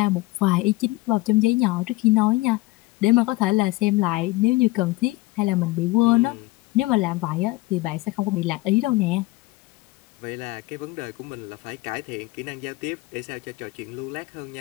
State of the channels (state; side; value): quieter; right; 20.9 dB